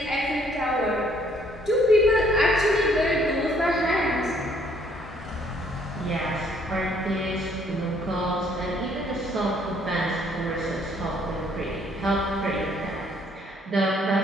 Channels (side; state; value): both; normal; correlation 0.64